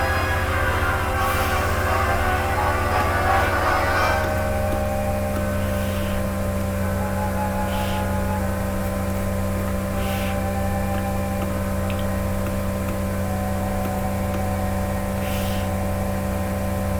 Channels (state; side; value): identical; both; correlation 1.00